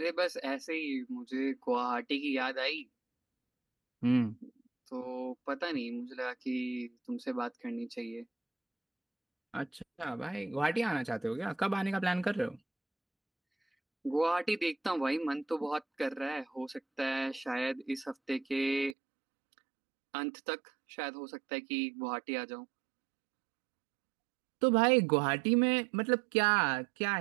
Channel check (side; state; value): left; drops out; at 18.9 s